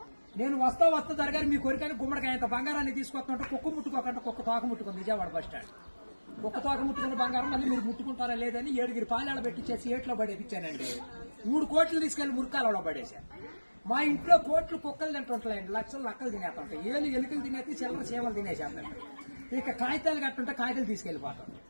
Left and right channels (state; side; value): inverted; both; correlation -1.00